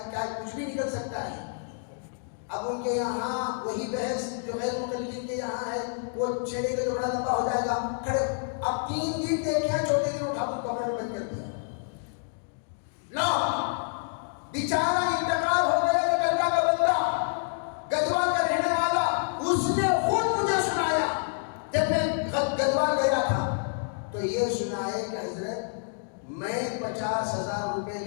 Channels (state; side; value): silent; right; digital silence